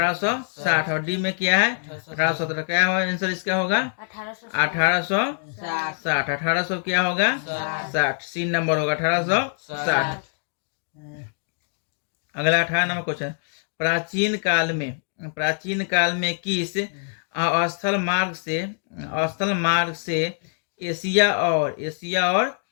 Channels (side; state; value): right; silent; digital silence